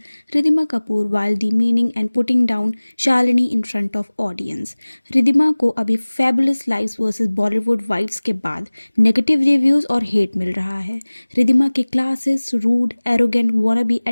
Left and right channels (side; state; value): both; inverted; correlation -1.00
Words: Ridhima Kapoor while demeaning and putting down Shalini in front of audience. Ridhima को अभी Fabulous Lives vs Bollywood Wives के बाद नेगेटिव रिव्यूज और हेट मिल रहा है. रिधिमा के classes, rude, arrogant, wannabe